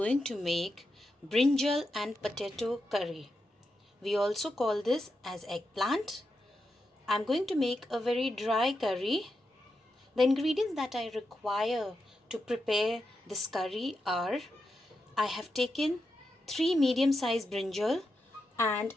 to make brinjal and potato curry. We also call this as eggplant. I am going to make a very dry curry. The ingredients that I require to prepare this curry are I have taken 3 medium-sized brinjal and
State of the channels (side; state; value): both; normal; correlation 0.87